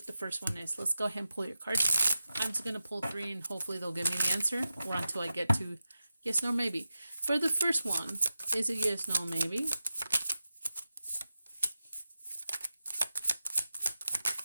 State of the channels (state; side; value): inverted; both; correlation -0.93